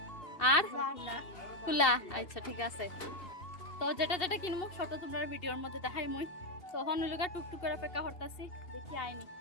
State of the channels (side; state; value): right; late; 2.7 ms